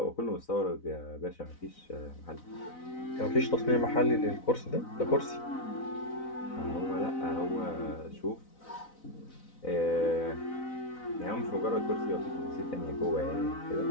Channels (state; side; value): late; right; 4.0 ms